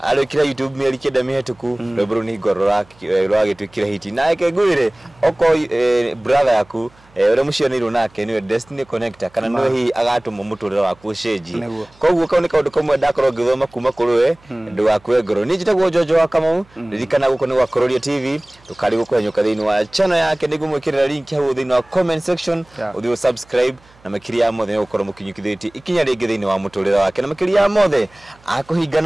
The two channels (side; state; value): right; noise; hum, 29 dB below the sound